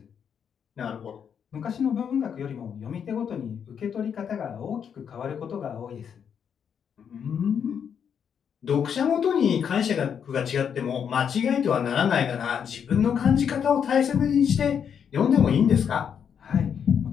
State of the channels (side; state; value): right; quieter; 7.7 dB